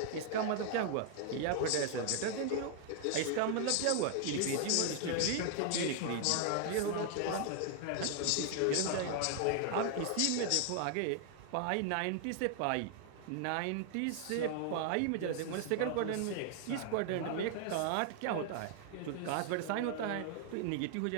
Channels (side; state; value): both; different; correlation 0.00